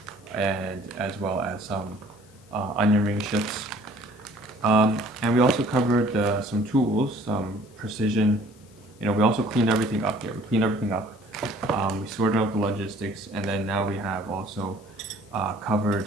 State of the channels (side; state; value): left; noise; hiss, 30 dB below the sound